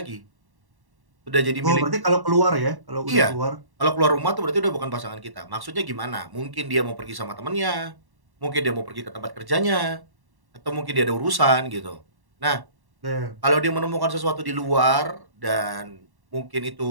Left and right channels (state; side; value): late; left; 1.1 ms